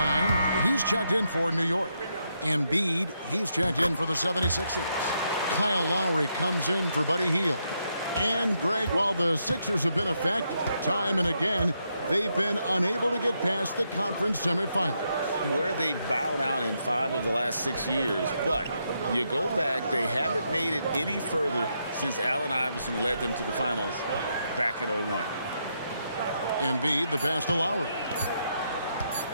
he's checked in for New York. Embiid, he's checked in for the 76ers. Kyle Lowry comes in for Buddy Hield. And, Greg, while the Sixers have been effective, time and again, they've been unable to get past the conference semifinals. Where they bowed out in 5 of the last 6 years. But you go back, they haven't made it any further since Allen Iverson led them to the finals back in 01. Embiid, the pass to Lowry.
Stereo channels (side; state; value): both; inverted; correlation -0.80